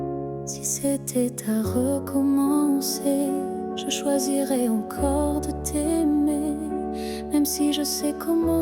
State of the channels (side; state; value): both; identical; correlation 1.00